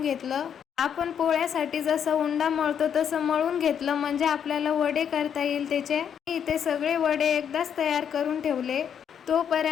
घेतलं. आपण पोळ्यासाठी जसं उंडा मळतो तसं मळून घेतलं, म्हणजे आपल्याला वडे करता येईल त्याचे. इथे सगळे वडे एकदाच तयार करून ठेवले.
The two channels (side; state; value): right; quieter; 8.3 dB